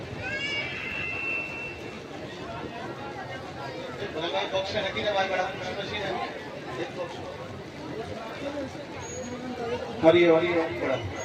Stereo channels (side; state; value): both; identical; correlation 1.00